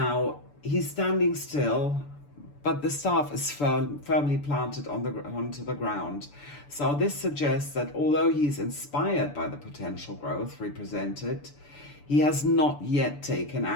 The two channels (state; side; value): late; right; 6.9 ms